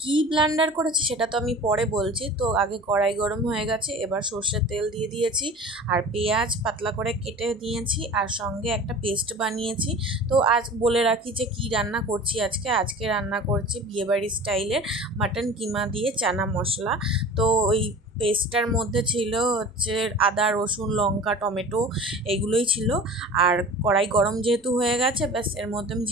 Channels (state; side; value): normal; both; correlation 0.40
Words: কি ব্লেন্ডার করেছি সেটা তো আমি পরে বলছি। তো আগে কড়াই গরম হয়ে গেছে, এবার সর্ষের তেল দিয়ে দিয়েছি আর পেঁয়াজ পাতলা করে কেটে দিয়েছি আর সঙ্গে একটা পেস্ট বানিয়েছি। তো আজ বলে রাখি যে কি রান্না করছি আজকে রান্না করছি বিয়েবাড়ি স্টাইলের মাটন কিমা দিয়ে চানা মশলা। তো ওই পেস্টটার মধ্যে ছিল হচ্ছে আদা রসুন লঙ্কা টমেটো এগুলোই ছিল। আর কড়াই গরম যেহেতু হয়ে গেছে, ব্যাস এর মধ্যে আমি